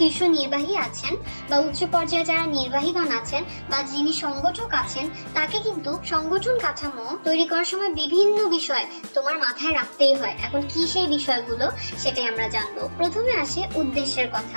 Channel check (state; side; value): inverted; both; correlation -1.00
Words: নির্বাহী আছেন বা উচ্চ পর্যায়ে যারা নির্বাহীগণ আছেন বা যিনি সংগঠক আছেন, তাকে কিন্তু সংগঠন কাঠামো তৈরি করার সময় বিভিন্ন বিষয় তোমার মাথায় রাখতেই হয়। এখন কি সেই বিষয়গুলো সেটাই আমরা জানবো। প্রথমে আসে উদ্দেশ্যের